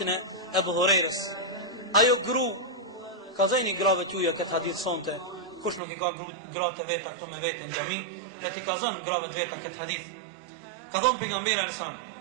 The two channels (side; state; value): left; drops out; at 5.8 s